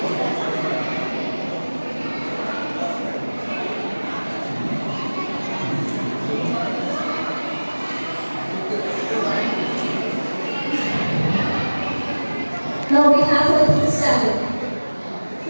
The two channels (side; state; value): both; inverted; correlation -1.00